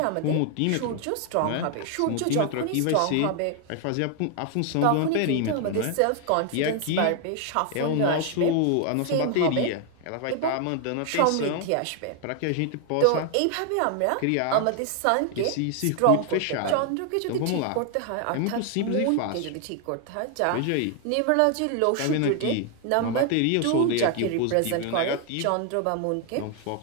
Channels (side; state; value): both; different; correlation 0.00